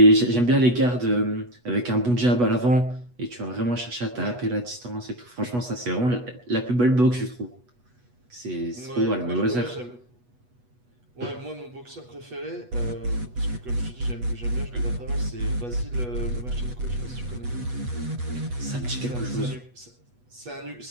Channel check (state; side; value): late; left; 8.2 ms